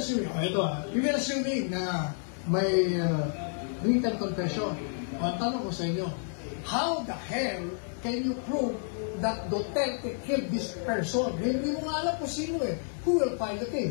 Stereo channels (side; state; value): right; silent; 58 dB below the other